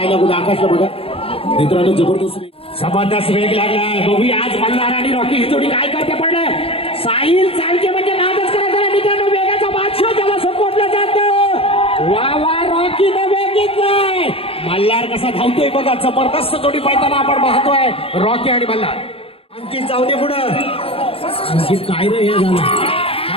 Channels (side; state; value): right; late; 0.28 ms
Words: कुठे. आकाशला बघा मित्रांनो. जबरदस्त वेग लागलाय. बघूया आज मल्हार आणि रॉकी ही जोडी काय करते. पडलं साहिल चालके म्हणजे नादच करायचा मित्रांनो. वेगाचा बादशाह ज्याला सपोर्टला जातं. वा वा. रॉकीने वेग घेतलाय. मल्हार कसा धावतोय बघा. जबरदस्त जोडी पळताना आपण पाहतोय. रॉकी आणि मल्हार. अंकित जाऊ दे पुढं. अंकित काय रे हे झालं.